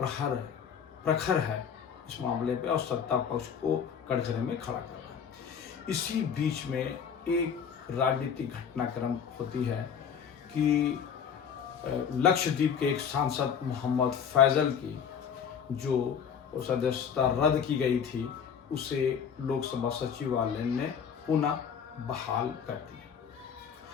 प्रखर है इस मामले पे और सत्ता पक्ष को कटघरे में खड़ा कर रहा है। इसी बीच में एक राजनीतिक घटनाक्रम होती है कि लक्षद्वीप के एक सांसद मोहम्मद फैजल की जो सदस्यता रद्द की गई थी उसे लोकसभा सचिवालय ने पुनः बहाल कर दी।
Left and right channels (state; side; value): quieter; right; 7.4 dB